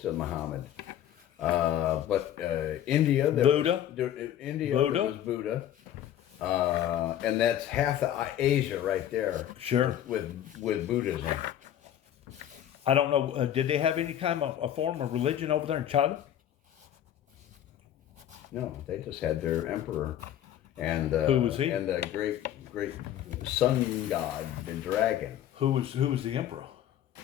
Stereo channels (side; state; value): right; quieter; 11.1 dB